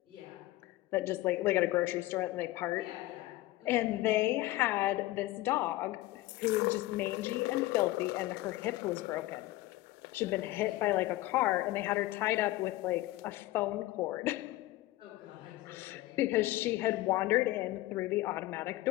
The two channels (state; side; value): quieter; right; 17.6 dB